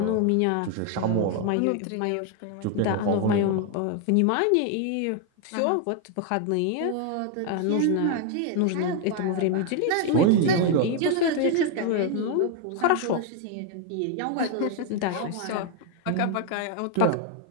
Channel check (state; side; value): different; both; correlation 0.01